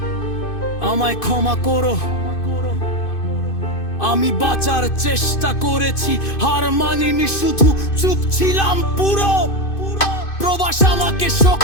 আমায় ক্ষমা করো। আমি বাঁচার চেষ্টা করেছি, হার মানিনি, শুধু চুপ ছিলাম পুরো। প্রবাস আমাকে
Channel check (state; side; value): late; right; 2.5 ms